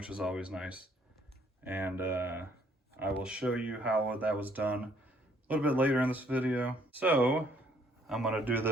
is always nice. And I will show you how that was done a little bit later in this video. So I'm gonna do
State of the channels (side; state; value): both; normal; correlation 0.64